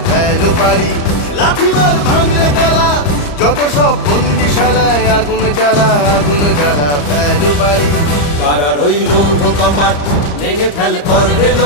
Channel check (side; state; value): right; late; 34 ms